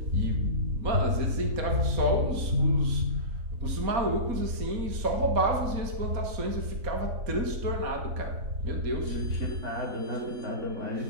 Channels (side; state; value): left; late; 4.2 ms